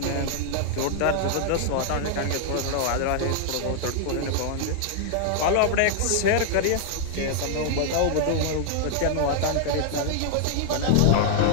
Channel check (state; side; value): different; both; correlation 0.00